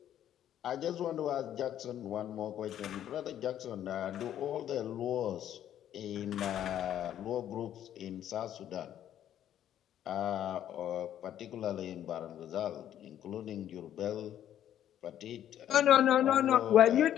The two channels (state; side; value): quieter; right; 11.0 dB